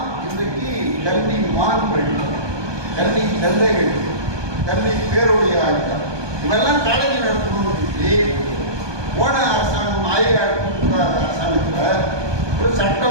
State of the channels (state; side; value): late; left; 1.2 ms